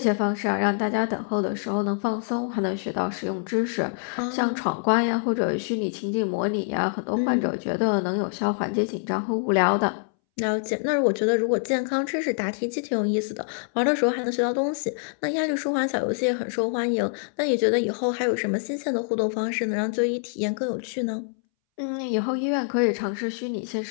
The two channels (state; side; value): silent; right; 61 dB below the other